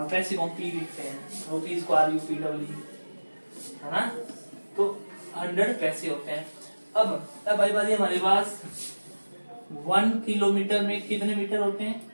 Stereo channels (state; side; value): inverted; both; correlation -1.00